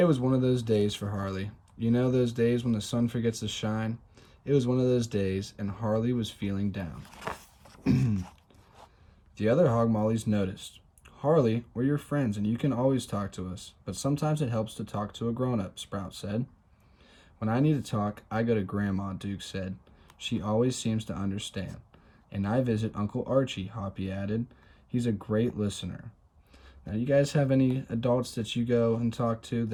was one of those days for Harley. You know those days when the sun forgets to shine? It was one of those days, and Harley was feeling down. The other Mollies noticed. Harley, we're your friends, and you can always talk to us, but sometimes it helps to talk to a grown-up, Sprout said. When I need to talk, I go to Grandma, Duke said. She always seems to understand. And I visit Uncle Archie, Hoppy added. He's a great listener. Now, you guys have any adults that you go and talk to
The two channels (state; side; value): identical; both; correlation 1.00